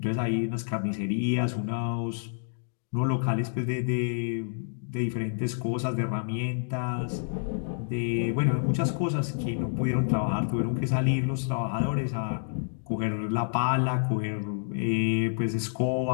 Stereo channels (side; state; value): right; silent; digital silence